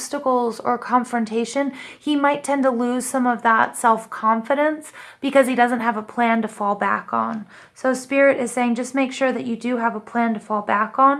or confrontation, he might tend to lose some of that self-confidence because he doesn't have a plan to fall back on. So Spirit is saying just make sure that you do have a plan to fall back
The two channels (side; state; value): both; identical; correlation 1.00